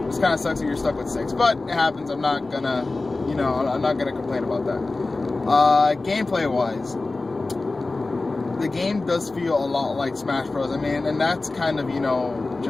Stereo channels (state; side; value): quieter; right; 3.3 dB